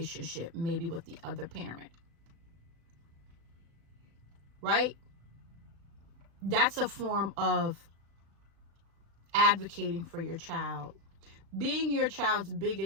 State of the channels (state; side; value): late; left; 36 ms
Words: maybe with the other parent. Right? That's a form of advocating for your child. Being your child's